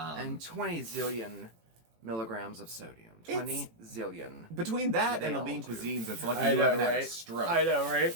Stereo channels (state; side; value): late; left; 18 ms